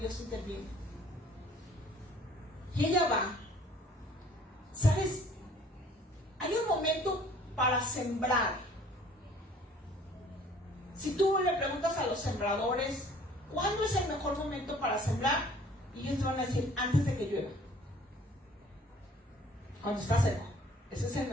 interviene. Y ella va. ¿Sabes? Hay un momento para sembrar. Si tú le preguntas a los sembradores, ¿cuándo es el mejor momento para sembrar? Y ellos te van a decir, antes de que llueva. Cuando está seco. Ese es el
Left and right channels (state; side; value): normal; both; correlation 0.54